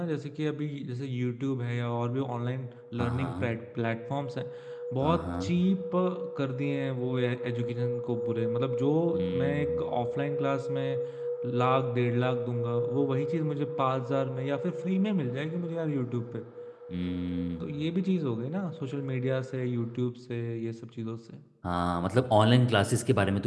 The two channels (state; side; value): identical; both; correlation 1.00